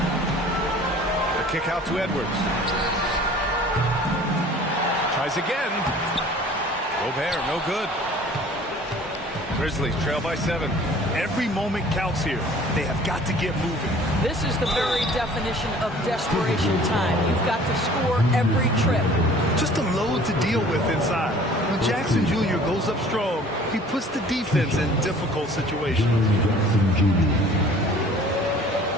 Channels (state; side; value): normal; both; correlation 0.49